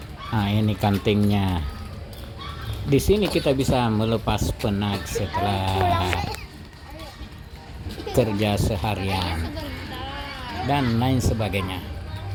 Ini kantingnya. Di sini kita bisa melepas penat setelah kerja seharian dan lain sebagainya.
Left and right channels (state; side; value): identical; both; correlation 1.00